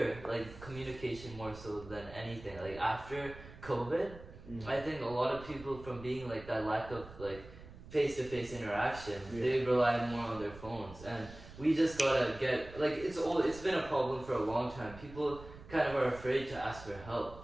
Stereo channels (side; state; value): right; noise; rumble, 16 dB below the sound